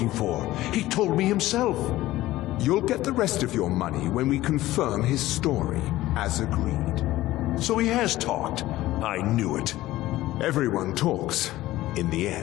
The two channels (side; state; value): right; quieter; 16.2 dB